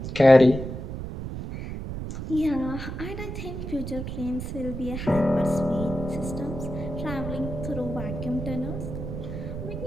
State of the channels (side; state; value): right; noise; rumble, 6 dB below the sound